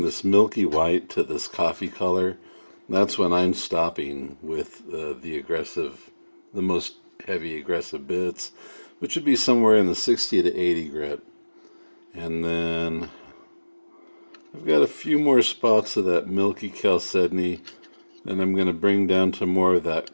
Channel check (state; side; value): inverted; both; correlation -1.00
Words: this milky white to this coffee color, that's when I'm stopping with the most heavy aggressive bits, which would be somewhere in the 60 to 80 grit. And then I've got a few more spots of that milky chalcedony, and I'm going to bring down to more of